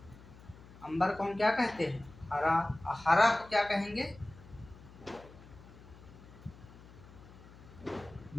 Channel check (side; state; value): left; noise; hum, 20 dB below the sound